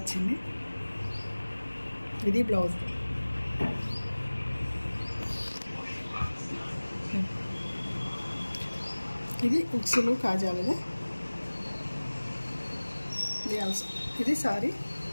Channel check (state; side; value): inverted; both; correlation -1.00